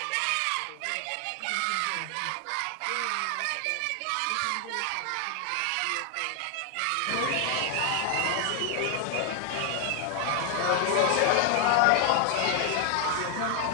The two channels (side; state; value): both; different; correlation 0.00